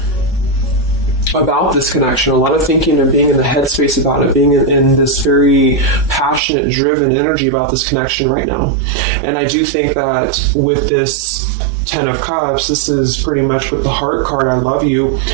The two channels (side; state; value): left; drops out; at 6.4 s